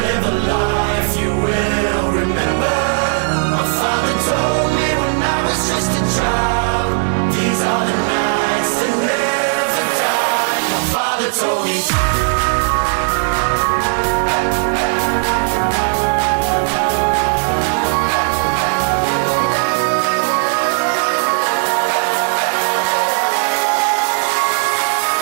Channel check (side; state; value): left; silent; 64 dB below the other